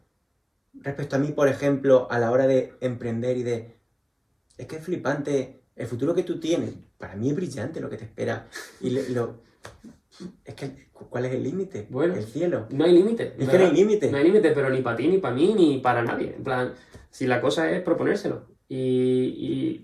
respecto a mí, por ejemplo, a la hora de emprender y de... Es que es flipante. El futuro que tú tienes, para mí es brillante lo que te espera. Y es que, ¿cuál es el límite? Bueno, el cielo. No hay límite. Es que no hay límite. No hay límite, pero ni para ti, ni para mí, ni para nadie. En plan, si la cosa es proponérselo y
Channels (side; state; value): both; identical; correlation 1.00